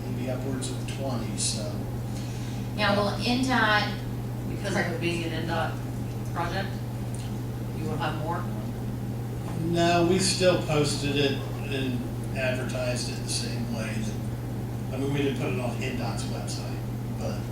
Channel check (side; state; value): both; identical; correlation 1.00